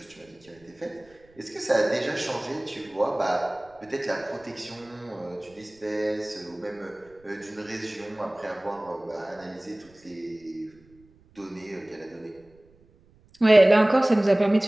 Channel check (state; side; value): noise; right; rumble, 30 dB below the sound